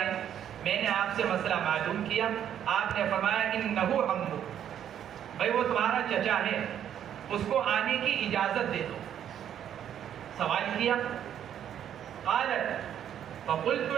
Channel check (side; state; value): left; quieter; 9.9 dB